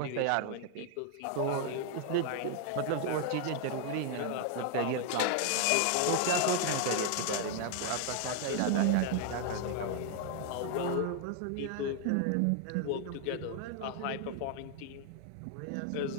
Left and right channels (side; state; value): both; different; correlation 0.00